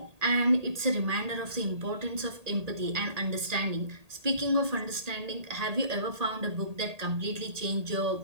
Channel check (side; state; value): left; late; 1.8 ms